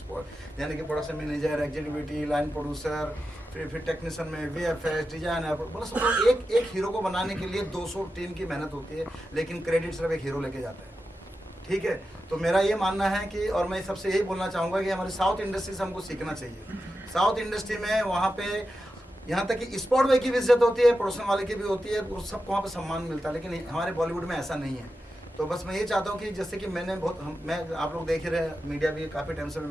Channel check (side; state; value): both; normal; correlation 0.90